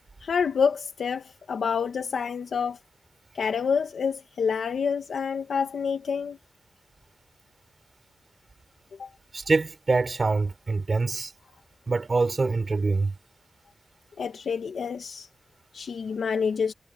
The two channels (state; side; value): normal; both; correlation 0.87